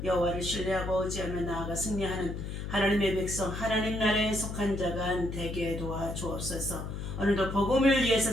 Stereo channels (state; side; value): noise; left; hum, 6 dB below the sound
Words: 여호와를 신뢰하고 의지하며 나아가 승리하는 하나님의 백성, 하나님 나라에 속한 자가 되게 도와주옵소서. 오늘도 복음을 위해서